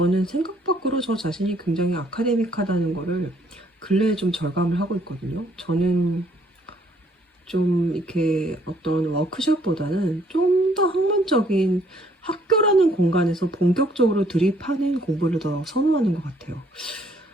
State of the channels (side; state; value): both; normal; correlation 0.64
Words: 생각 밖으로 저 자신이 굉장히 아카데믹하다는 거를 근래에 좀 절감을 하고 있거든요. 저는 좀 이렇게 어떤 워크숍보다는 좀 더 학문적인 학교라는 공간에서 본격적으로 드립하는 공부를 더 선호하는 것 같아요.